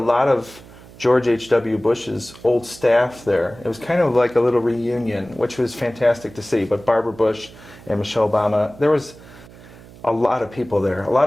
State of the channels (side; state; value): right; noise; hum, 21 dB below the sound